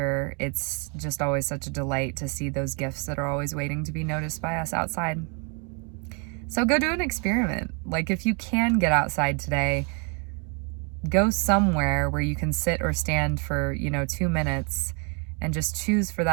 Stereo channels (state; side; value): quieter; left; 35.5 dB